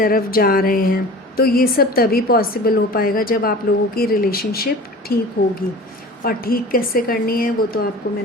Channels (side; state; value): both; normal; correlation 0.39